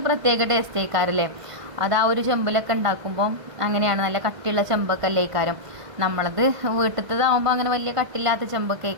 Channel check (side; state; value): left; late; 1.5 ms